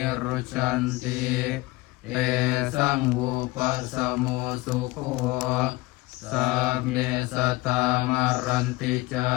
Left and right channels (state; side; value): quieter; right; 20.8 dB